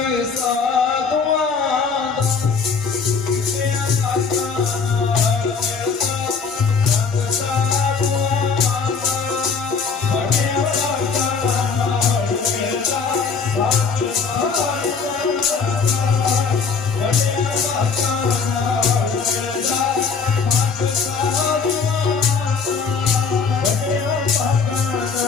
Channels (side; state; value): right; quieter; 5.3 dB